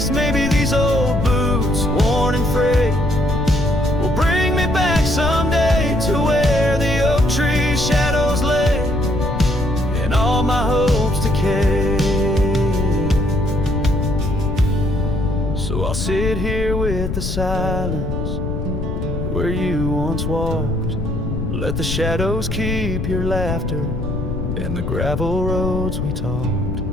Maybe these old boots, worn and frayed, will bring me back someday to where the oak tree shadows lay and all my hopes decay. So I'll sit here with the silence where you once walked. Let the shadows keep your laughter and the gravel roads we talked.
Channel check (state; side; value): noise; left; rumble, 2 dB below the sound